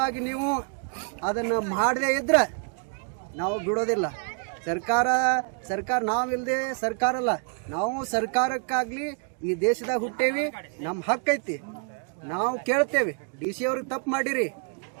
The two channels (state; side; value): quieter; left; 39.6 dB